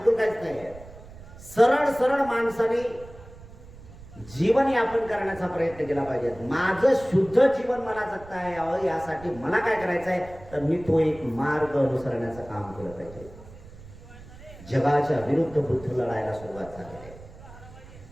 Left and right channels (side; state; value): right; noise; rumble, 18 dB below the sound